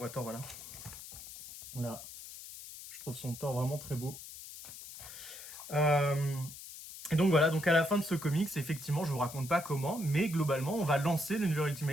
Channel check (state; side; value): noise; left; hiss, 13 dB below the sound